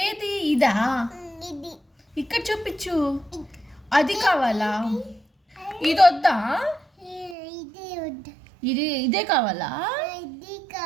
ఏది? ఇదా? ఇది ఇక్కడ చూపించు. అది కావాలా? ఇది వద్దా? ఇది వద్దు. ఇదే కావాలా? ఇది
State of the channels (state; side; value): drops out; left; at 7.4 s